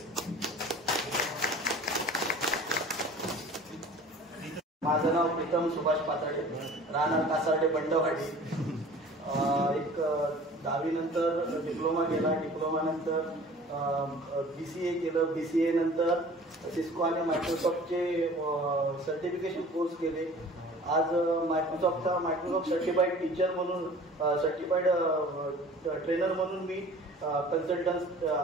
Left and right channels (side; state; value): both; normal; correlation 0.45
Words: माझं नाव प्रीतम सुभाष पाताडे, राहणार कासारडे बंडवाडी. एक 10वी नंतर डिप्लोमा केला. डिप्लोमा नंतर BCA केलं. BCA नंतर सिस्को आणि मायक्रोसॉफ्टचे सर्टिफिकेशन कोर्स केले. आज मायक्रोसॉफ्ट सर्टिफाईड टीचर म्हणून सर्टिफाईड ट्रेनर म्हणून मी कन्सल्टंट